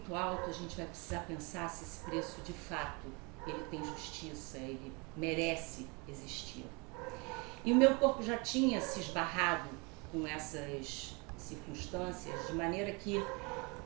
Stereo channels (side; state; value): left; quieter; 29.5 dB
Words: alto, a gente vai precisar pensar se esse preço de fato ele tem justiça, ele merece existir. E o meu corpo já tinha se esbarrado com essas circunstâncias, de maneira que